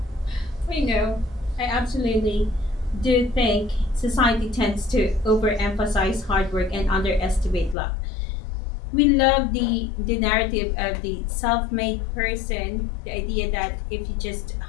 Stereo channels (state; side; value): drops out; right; at 7.8 s